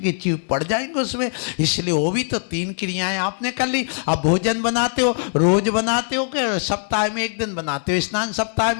जीभ पड़ जाएंगे उसमें। इसलिए वो भी तो 3 क्रियाएं आपने कर ली। अब भोजन बनाते हो, रोज बनाते हो कि सप्ताह में 1 दिन बनाते हो? स्नान सप्ताह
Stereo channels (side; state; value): right; silent; 59 dB below the other